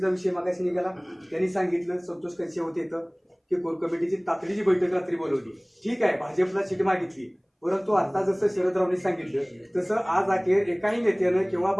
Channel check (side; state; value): both; identical; correlation 1.00